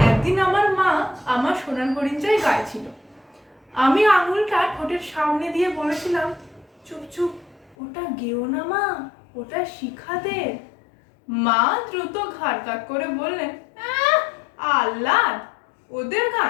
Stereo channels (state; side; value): drops out; right; at 7.8 s